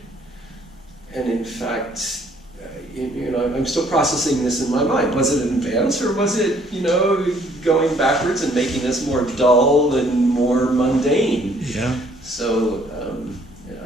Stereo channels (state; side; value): normal; both; correlation 0.62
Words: And in fact, you know, I'm still processing this in my mind. Was it an advance, or was it, you know, going backwards and making us more dull and more mundane? Yeah. So,